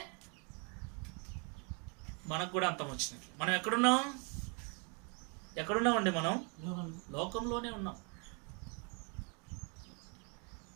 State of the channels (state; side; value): quieter; left; 36.3 dB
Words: మనకు కూడా అంతం వచ్చినట్లు. మనం ఎక్కడున్నామండి? మనం లోకంలోనే ఉన్నాం.